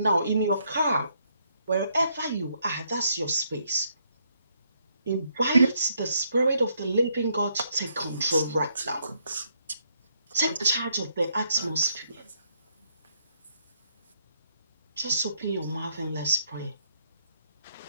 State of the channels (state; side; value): inverted; both; correlation -0.72